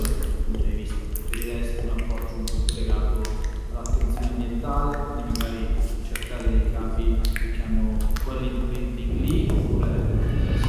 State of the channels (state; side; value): identical; both; correlation 1.00